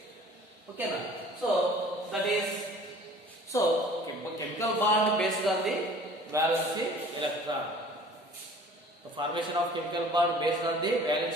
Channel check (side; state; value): both; normal; correlation 0.48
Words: Okay now. So that is chemical bond based on the valency electron. The formation of chemical bond based on the